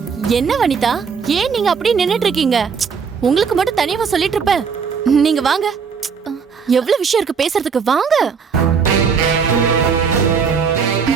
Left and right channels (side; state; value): left; quieter; 6.1 dB